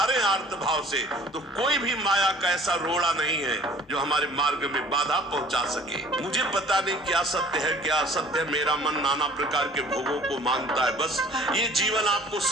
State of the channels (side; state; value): both; normal; correlation 0.51